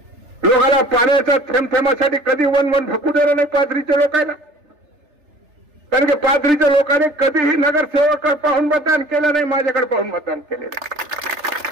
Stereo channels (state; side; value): late; left; 3.4 ms